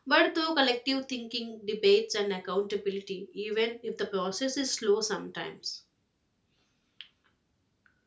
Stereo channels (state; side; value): identical; both; correlation 1.00